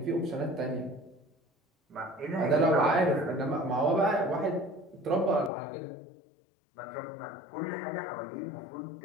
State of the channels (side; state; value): right; drops out; at 5.5 s